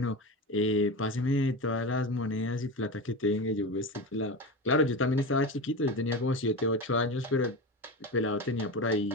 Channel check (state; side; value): normal; both; correlation 0.24